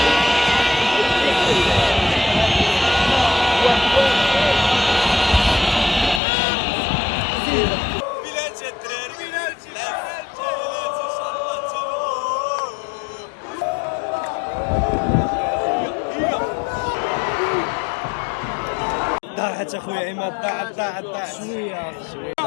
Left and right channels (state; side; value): drops out; right; at 6.2 s